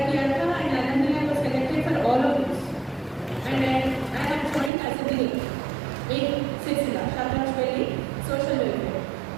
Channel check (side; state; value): left; drops out; at 4.7 s